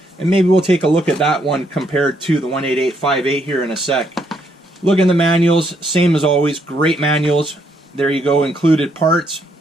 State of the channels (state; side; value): normal; both; correlation 0.73